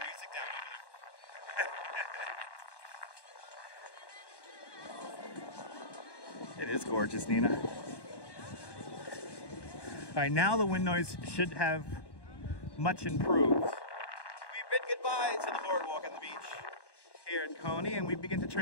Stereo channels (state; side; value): late; right; 1.1 ms